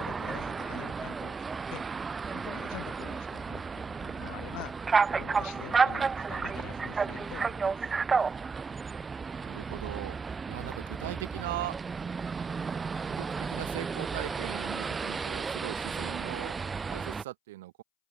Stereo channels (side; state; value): left; quieter; 4.8 dB